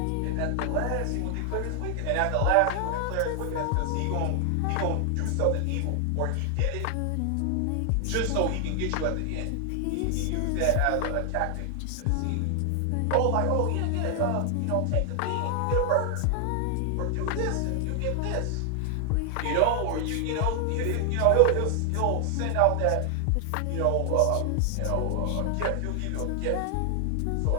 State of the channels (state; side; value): different; both; correlation 0.00